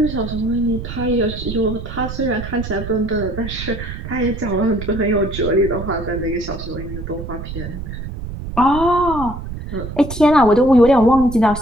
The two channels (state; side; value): noise; right; rumble, 8 dB below the sound